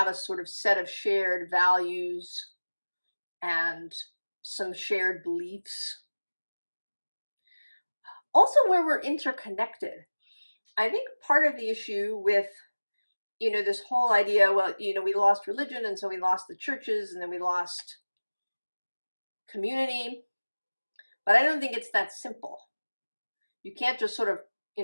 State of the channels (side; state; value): both; inverted; correlation -1.00